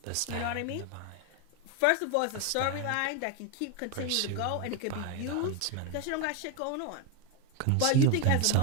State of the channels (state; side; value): different; both; correlation 0.01